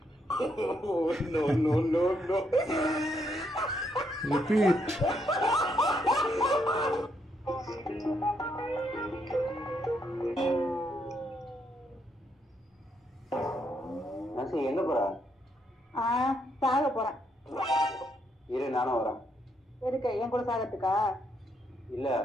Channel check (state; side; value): normal; both; correlation 0.75